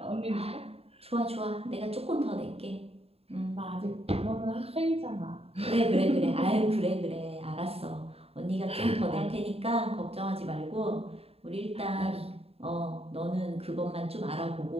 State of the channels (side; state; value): left; late; 0.29 ms